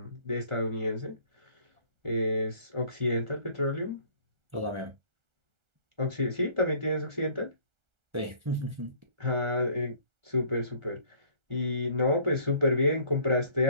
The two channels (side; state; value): left; late; 1.3 ms